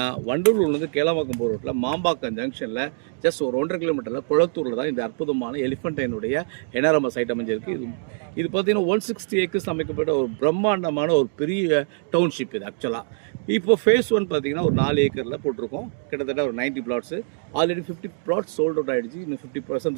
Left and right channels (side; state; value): left; silent; digital silence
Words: வண்டலூர்லேருந்து கேளம்பாக்கம் போகிற ரோட்டில் மாம்பாக்கம் ஜங்ஷனில் ஜஸ்ட் ஒரு 1.5 கிலோமீட்டரில் குளத்தூரில் தான் இந்த அற்புதமான எலிஃபண்டைனுடைய என்ஆர்எம்எஸ் சைட் அமைஞ்சிருக்கு. இது பார்த்தீங்கன்னா 160 ஏக்கர்ஸ் அமைக்கப்பட்ட ஒரு பிரம்மாண்டமான ஒரு பெரிய டவுன்ஷிப் இது ஆக்சுவலாக. இப்போ ஃபேஸ் 1 பார்த்தீங்கன்னா ஒரு 4 ஏக்கரில் போட்டிருக்கோம். கிட்டத்தட்ட ஒரு 90 flats. Already 50 flats sold out ஆகிடுச்சு. இன்னும்